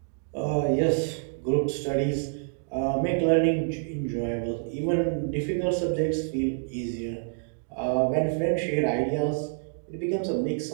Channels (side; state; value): left; silent; digital silence